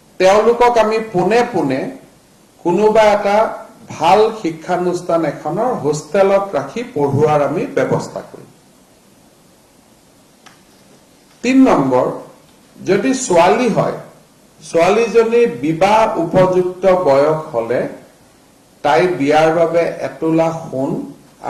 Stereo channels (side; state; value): both; identical; correlation 1.00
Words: তেওঁলোকক আমি পোনে পোনে কোনোবা এটা ভাল শিক্ষানুষ্ঠান এখনৰ হোষ্টেলত ৰাখি পঢ়ুৱাৰ আমি ব্যৱস্থা কৰিম ৩ নম্বৰ যদি ছোৱালী হয় ছোৱালীজনী বিবাহ উপযুক্ত বয়স হলে তাই বিয়াৰ বাবে ১ তোলা সোণ